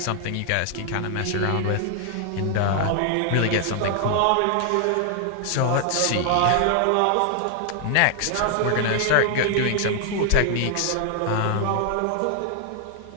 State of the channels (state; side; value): different; both; correlation 0.00